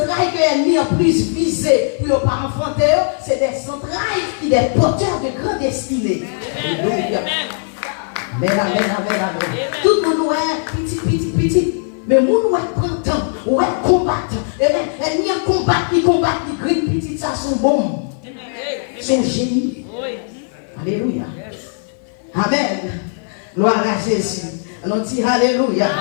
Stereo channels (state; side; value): silent; right; 55 dB below the other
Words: l'ennemi a plus visé pour ne pas enfanter, c'est des centrales qui sont des porteurs de grande destinée. Alléluia. Amen. Tout le monde est petit. Mais nous prend temps, ouais, combattre. Et ni combattre, ni green petit, ça sont bons. C'est génie. Alléluia. Amen. Gloire à Jésus. On dit Alléluia.